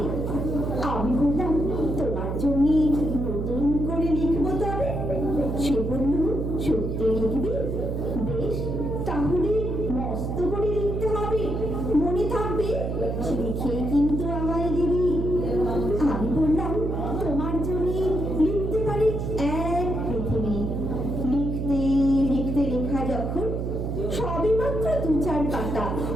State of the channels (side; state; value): right; noise; hum, 2 dB below the sound